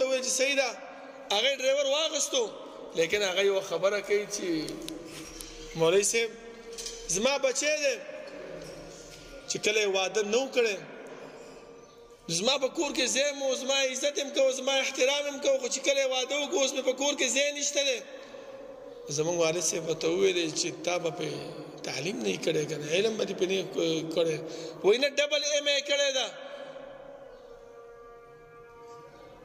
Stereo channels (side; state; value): both; identical; correlation 1.00